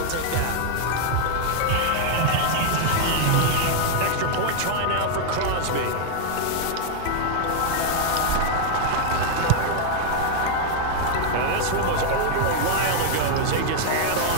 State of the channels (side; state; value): both; different; correlation -0.01